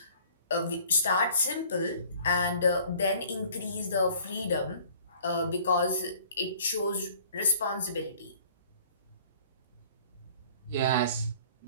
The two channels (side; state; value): both; inverted; correlation -0.53